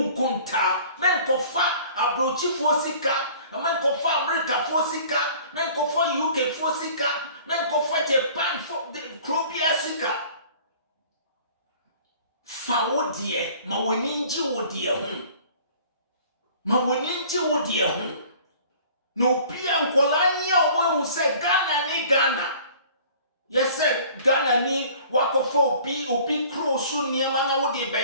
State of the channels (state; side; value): inverted; both; correlation -0.49